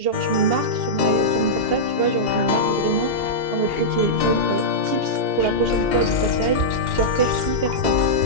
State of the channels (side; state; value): left; late; 2.7 ms